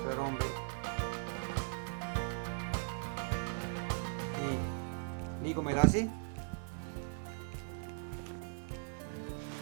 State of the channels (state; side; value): silent; left; 52 dB below the other